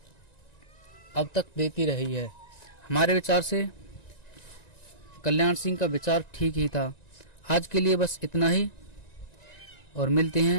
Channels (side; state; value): right; late; 1.9 ms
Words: अब तक देती रही है। हमारे विचार से कल्याण सिंह का विचार ठीक ही था। आज के लिए बस इतना ही और मिलते